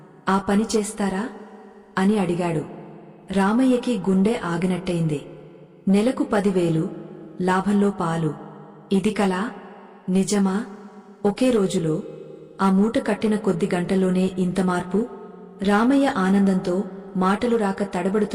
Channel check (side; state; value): both; identical; correlation 1.00